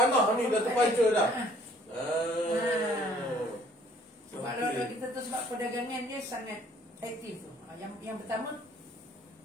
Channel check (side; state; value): both; normal; correlation 0.58